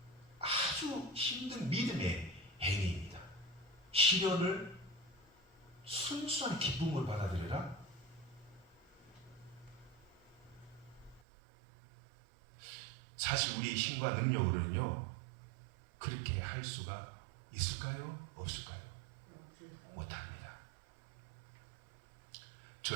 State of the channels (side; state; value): left; drops out; at 11.2 s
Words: 아주 힘든 믿음의 행위입니다. 시련을 순수한 기쁨으로 받아들여라. 사실 우리 힘과 능력으로는요, 그렇게 할 수가 있을까요? 없을까요? 못합니다.